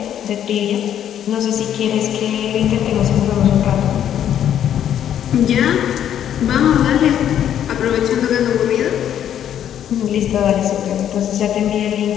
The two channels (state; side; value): quieter; right; 10.1 dB